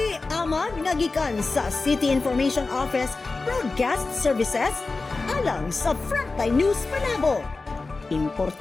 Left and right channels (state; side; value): quieter; right; 3.7 dB